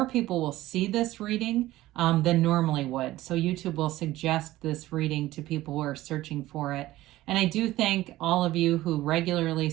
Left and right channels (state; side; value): quieter; left; 16.4 dB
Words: people will see this reading than normally would. So YouTube will suggest this reading to people who are searching for it. And I do thank all of you who regularly